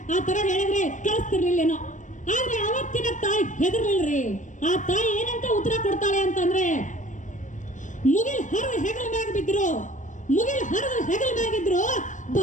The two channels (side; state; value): right; late; 0.37 ms